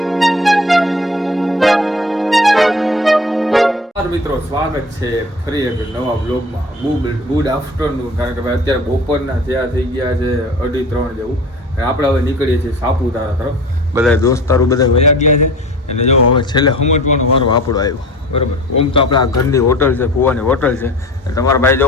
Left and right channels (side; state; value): both; normal; correlation 0.40